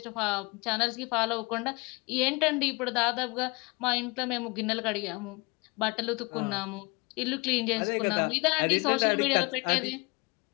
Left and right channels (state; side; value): quieter; right; 26.8 dB